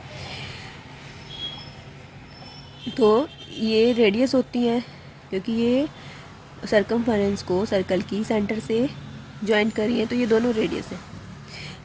तो ये रेडियस होती है, क्योंकि ये सरकमफेरेंस को सर्कल की सेंटर से जॉइंट करी है, तो ये दोनों रेडियस है,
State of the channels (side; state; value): both; identical; correlation 1.00